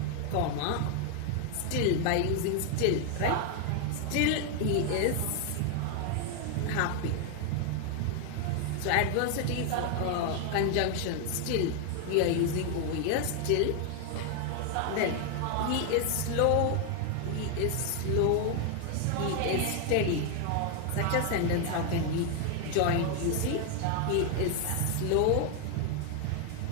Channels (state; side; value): different; both; correlation 0.00